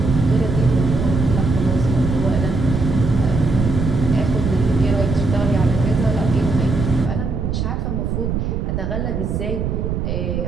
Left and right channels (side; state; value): right; noise; rumble, 2 dB below the sound